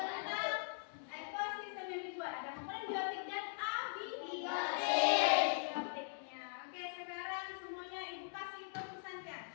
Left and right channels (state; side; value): silent; right; digital silence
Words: ekosistem yang dibuat. Ada komponen biotik dan abiotiknya. Oke, sekarang semuanya ibu kasih tepuk santiang.